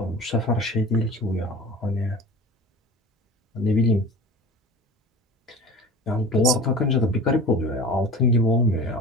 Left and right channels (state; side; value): normal; both; correlation 0.37